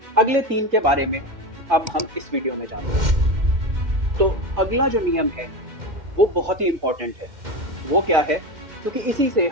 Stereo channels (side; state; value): left; late; 2.1 ms